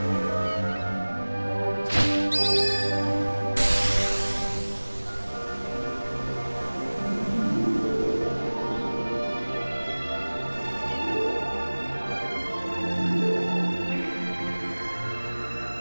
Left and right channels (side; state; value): both; inverted; correlation -1.00